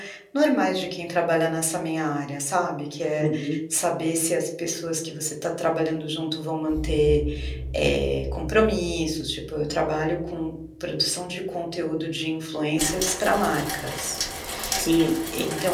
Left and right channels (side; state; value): both; identical; correlation 1.00